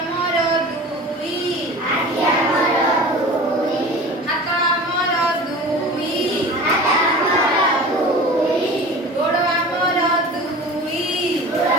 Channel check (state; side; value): normal; both; correlation 0.38